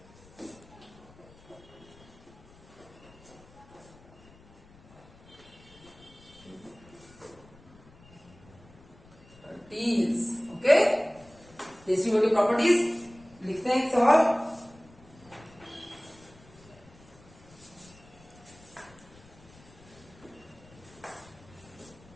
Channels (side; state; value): left; noise; rumble, 24 dB below the sound